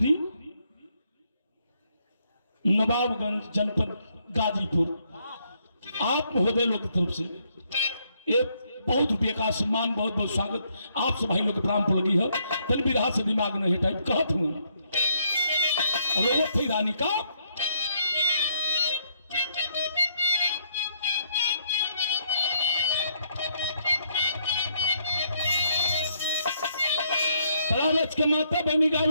नवाबगंज जनपद गाजीपुर, आप महोदय लोग की तरफ से एक बहुत रुपये का सम्मान, बहुत बहुत स्वागत आप सब भाई लोग के प्राण पर लगी है। तन विधा से दिमाग नहीं हटाई कहत हूँ रोवत थी रानी का लालच के माता बनी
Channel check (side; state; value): both; inverted; correlation -0.72